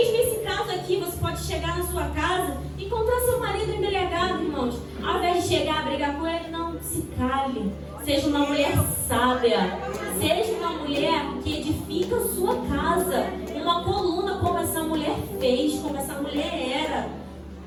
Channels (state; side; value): identical; both; correlation 1.00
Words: esse caso aqui, você pode chegar na sua casa e encontrar seu marido embriagado, irmãos. Ao invés de chegar a brigar com ele, não, se cale. Seja uma mulher sábia. Seja uma mulher que edifica a sua casa. Uma coluna como essa mulher fez, como essa mulher era.